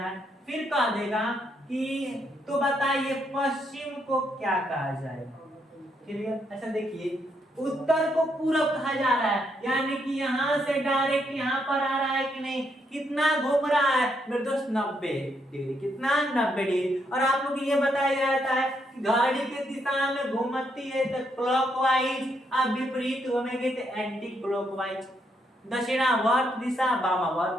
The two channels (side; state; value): both; normal; correlation 0.76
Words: फिर कह देगा कि तो बताइए पश्चिम को क्या कहा जाएगा। क्लियर, अच्छा देखिए, उत्तर को पूरब कहा जा रहा है, यानी कि यहाँ से डायरेक्ट यहाँ पर आ रहा है कि नहीं, कितना घूम रहा है मेरे दोस्त, 90 डिग्री। कितना, 90 डिग्री। और आप लोग ये बताया जाता है कि घड़ी के दिशा में घूमती है तो क्लॉकवाइज, आप विपरीत घूमेंगे तो एंटी क्लॉकवाइज। दक्षिणावर्त दिशा,